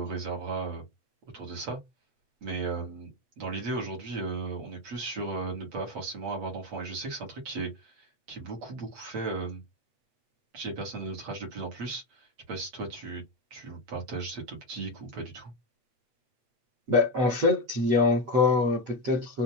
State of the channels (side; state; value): left; late; 8.4 ms